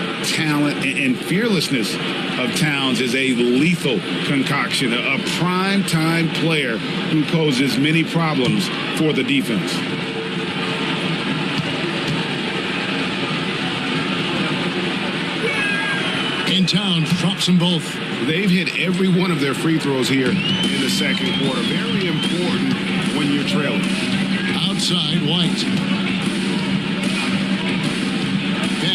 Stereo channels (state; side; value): identical; both; correlation 1.00